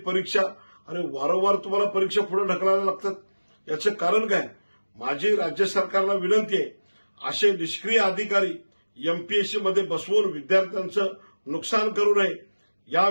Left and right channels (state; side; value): inverted; both; correlation -1.00